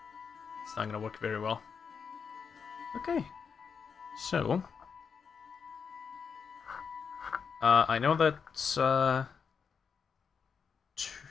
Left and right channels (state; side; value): quieter; right; 6.1 dB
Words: It's not going to work very well. Okay. So I know that